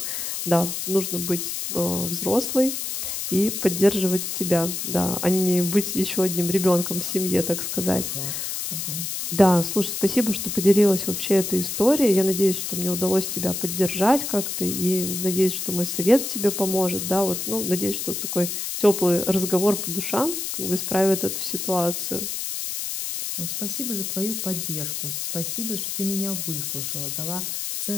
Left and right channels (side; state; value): left; noise; hiss, 4 dB below the sound